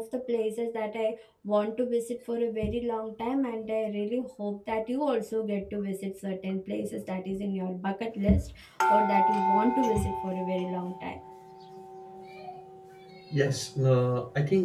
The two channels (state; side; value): identical; both; correlation 1.00